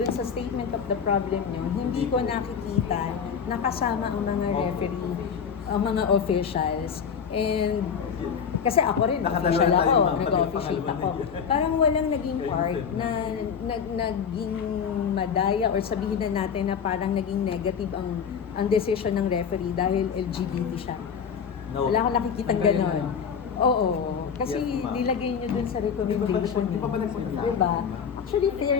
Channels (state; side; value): quieter; right; 6.9 dB